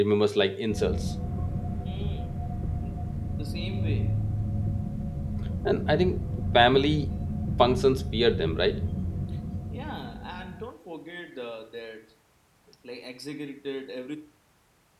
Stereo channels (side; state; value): both; identical; correlation 1.00